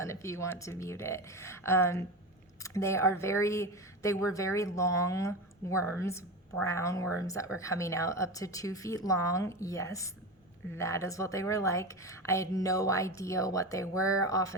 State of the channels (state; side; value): normal; both; correlation 0.24